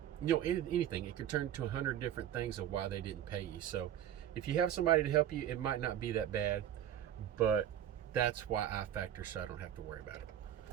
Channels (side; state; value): left; quieter; 10.7 dB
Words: anything. It could turn to 100 different things of why they didn't pay you. So if you have somebody to help you, it might not be that bad, but that's why I factor, so I don't have to worry about it.